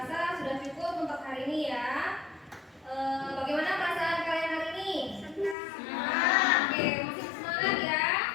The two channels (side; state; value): right; drops out; at 5.6 s